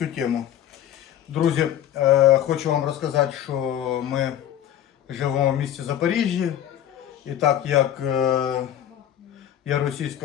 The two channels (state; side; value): quieter; right; 11.1 dB